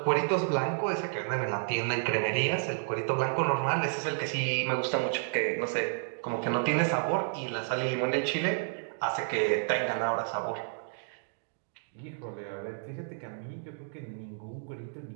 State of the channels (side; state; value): left; silent; digital silence